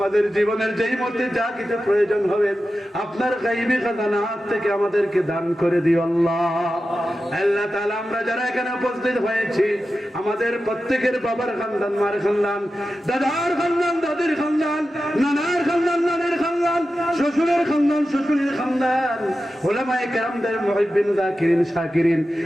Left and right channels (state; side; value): normal; both; correlation 0.92